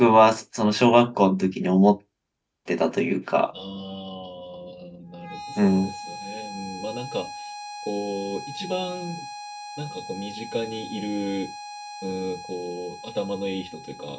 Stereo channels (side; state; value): both; identical; correlation 1.00